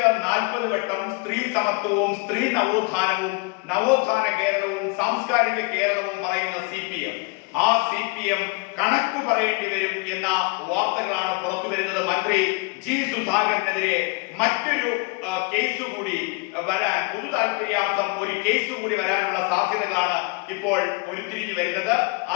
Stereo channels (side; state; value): right; quieter; 29.9 dB